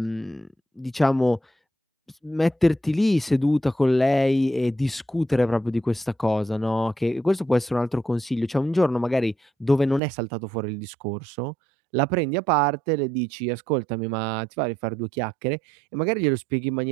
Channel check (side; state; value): left; drops out; at 10.0 s